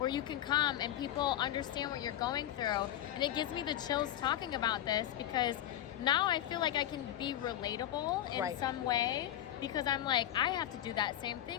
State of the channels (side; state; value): right; quieter; 12.1 dB